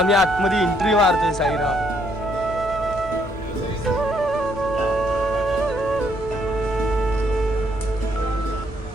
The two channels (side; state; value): right; noise; rumble, 17 dB below the sound